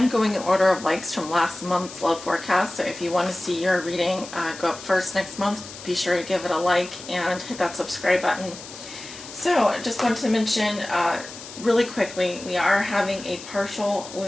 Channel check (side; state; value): left; noise; hiss, 14 dB below the sound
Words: going in order of likes from last month's love forecast, so if you want to see your reading go up first next month, be sure to give it a like and hit that subscribe button. So I just wanted to mention really quickly, we are having a partial